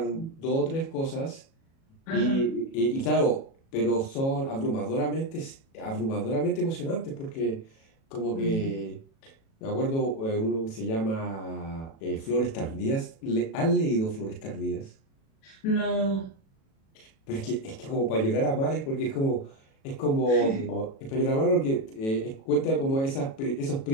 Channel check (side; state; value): right; late; 37 ms